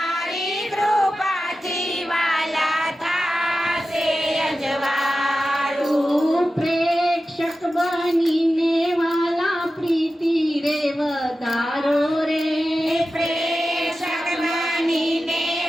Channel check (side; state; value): both; normal; correlation 0.93